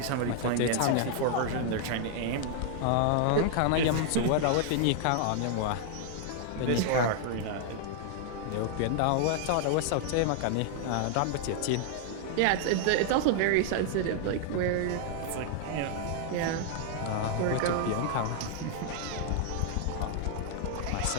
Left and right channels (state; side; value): different; both; correlation 0.00